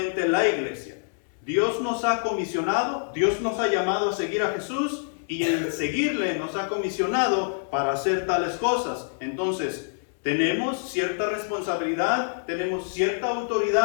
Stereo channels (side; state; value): right; silent; digital silence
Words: la iglesia. Dios nos ha comisionado, Dios nos ha llamado a seguir a Jesús, y en seguirle nos ha comisionado para hacer tales cosas. Entonces, tenemos cierta responsabilidad, tenemos cierta